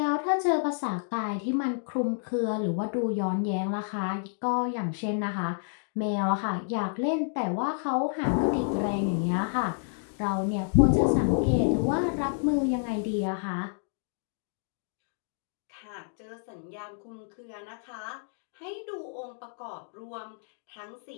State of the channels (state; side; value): silent; right; digital silence